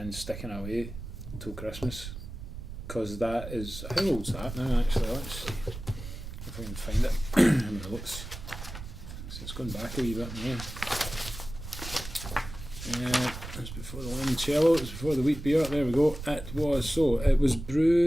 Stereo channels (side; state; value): right; noise; rumble, 10 dB below the sound